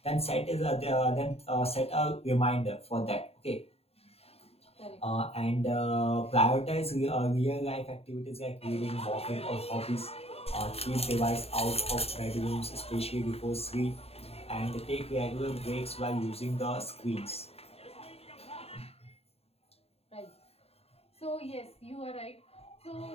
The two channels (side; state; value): right; late; 0.29 ms